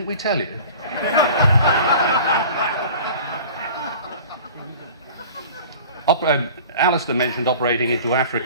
we tell you? Alistair mentioned operating into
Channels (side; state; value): both; inverted; correlation -0.43